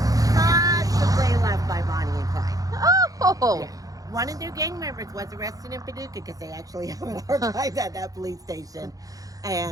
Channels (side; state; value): left; late; 0.17 ms